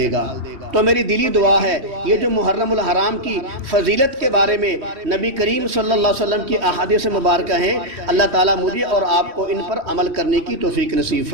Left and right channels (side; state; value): left; late; 3.1 ms